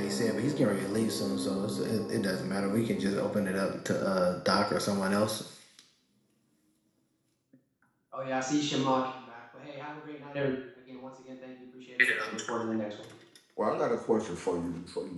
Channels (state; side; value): identical; both; correlation 1.00